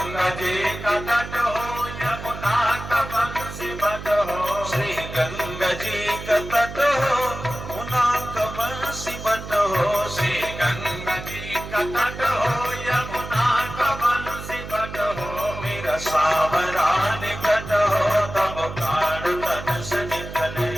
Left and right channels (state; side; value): noise; right; hum, 10 dB below the sound